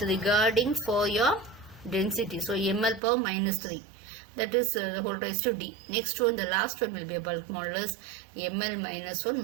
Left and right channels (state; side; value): drops out; left; at 3.0 s